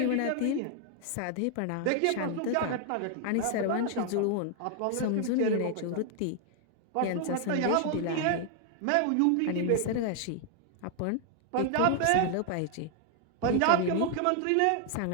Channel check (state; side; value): different; both; correlation 0.00